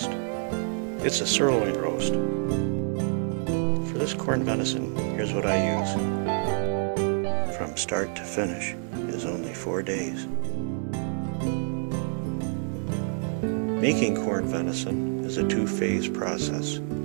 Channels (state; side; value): silent; left; 60 dB below the other